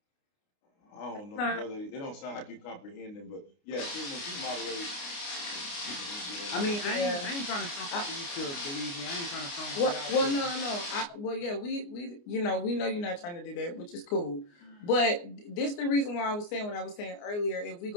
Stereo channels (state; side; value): late; right; 29 ms